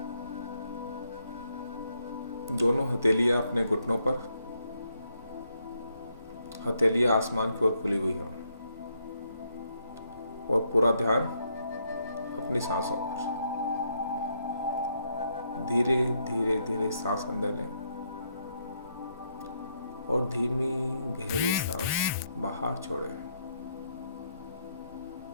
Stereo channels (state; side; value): inverted; both; correlation -0.76